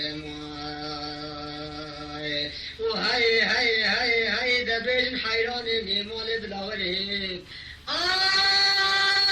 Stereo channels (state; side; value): identical; both; correlation 1.00